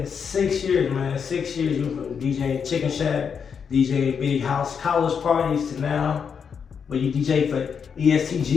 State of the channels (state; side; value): quieter; right; 6.7 dB